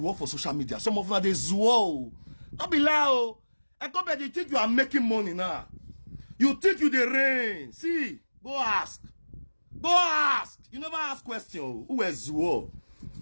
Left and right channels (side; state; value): both; inverted; correlation -1.00